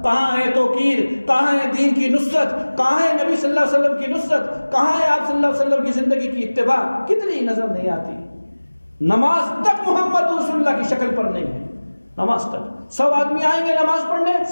کہاں ہے توقیر؟ کہاں ہے دین کی نصرت؟ کہاں ہے نبی صلی اللہ علیہ وسلم کی نصرت؟ کہاں ہے آپ صلی اللہ علیہ وسلم کی زندگی کی اتباع؟ کتنی نظر نہیں آتی. نماز تک محمد رسول اللہ کی شکل پر نہیں ہے. نماز تک 100 آدمی آئیں گے نماز پڑھنے،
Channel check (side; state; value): both; inverted; correlation -1.00